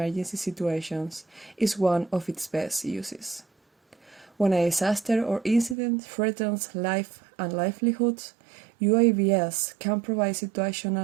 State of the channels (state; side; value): drops out; left; at 5.8 s